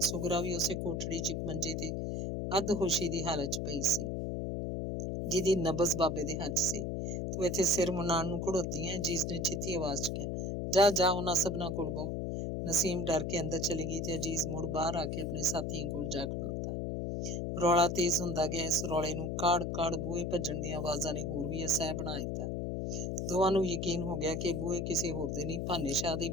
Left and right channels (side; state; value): left; noise; hum, 2 dB below the sound